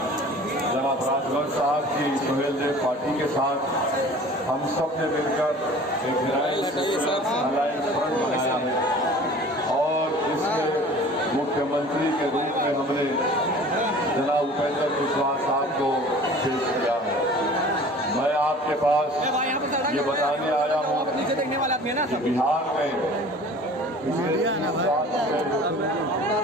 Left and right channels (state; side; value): normal; both; correlation 0.45